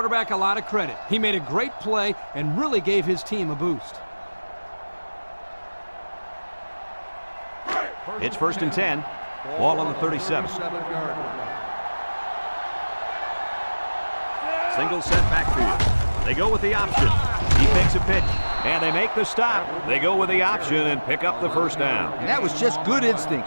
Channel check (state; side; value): inverted; both; correlation -1.00